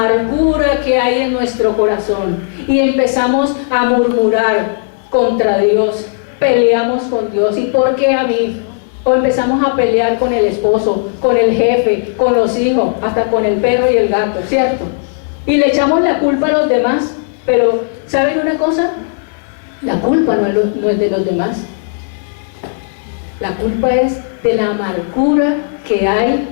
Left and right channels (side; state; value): right; silent; digital silence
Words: que hay en nuestro corazón. Y empezamos a murmurar contra Dios. Peleamos con Dios. ¿Y por qué a mí? O empezamos a pelear con el esposo, con el jefe, con los hijos, hasta con el perro y el gato, ¿cierto? Y le echamos la culpa a los demás. Pero, ¿saben una cosa? La culpa no es de los demás. La culpa es de la amargura que hay